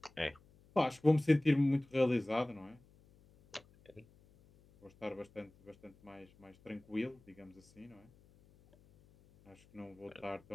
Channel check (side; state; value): left; noise; hum, 28 dB below the sound